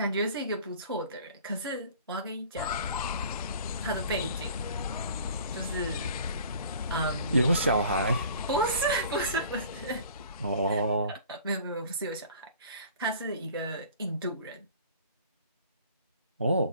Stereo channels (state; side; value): inverted; both; correlation -0.48